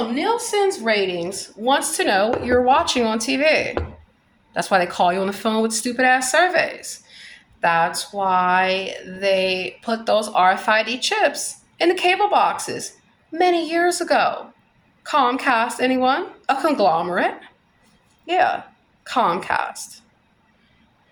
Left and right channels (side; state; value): both; identical; correlation 1.00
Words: Nielsen's ratings wants to know what you're watching on TV. That's why they call you on the phone with stupid ass surveys. That's why they put those RFID chips in the cable boxes many years ago. Comcast, anyone? A conglomerate? Yeah, Comcast.